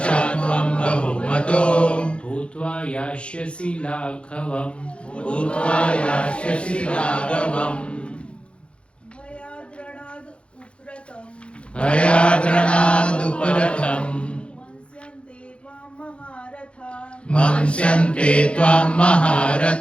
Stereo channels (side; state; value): right; late; 0.059 ms